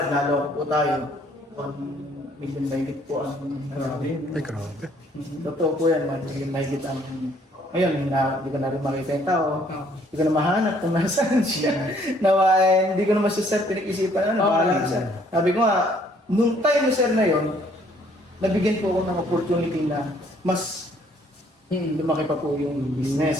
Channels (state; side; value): normal; both; correlation 0.63